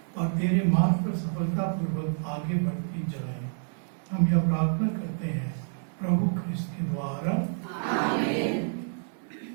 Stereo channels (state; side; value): silent; left; digital silence